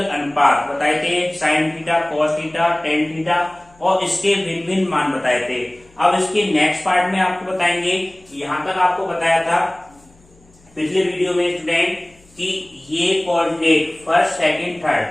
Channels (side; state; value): left; noise; hum, 30 dB below the sound